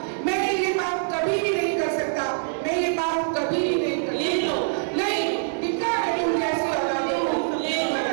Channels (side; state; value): left; silent; 62 dB below the other